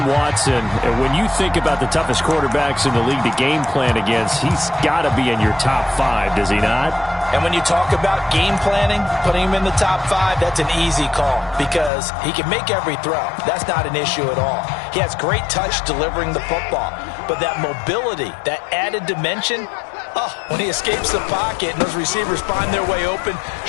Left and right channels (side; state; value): right; drops out; at 11.9 s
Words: Watson, when you think about the toughest quarterbacks in the league to game plan against, he's got to be in your top 5, does he not? And when you talk about game planning, putting him in the top 5, that's an easy call because he can make every throw. That's not an issue at all. He has great touch delivering the football. But that mobility, that added dimension, when he escapes the pocket and those receivers find their way open,